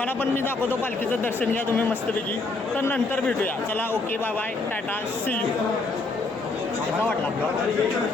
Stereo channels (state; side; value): quieter; right; 3.5 dB